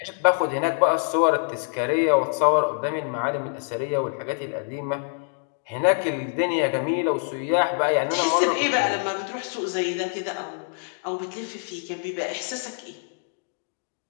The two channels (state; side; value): silent; right; 62 dB below the other